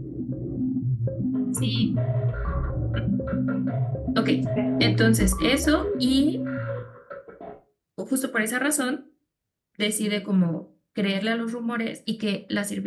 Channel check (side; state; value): both; identical; correlation 1.00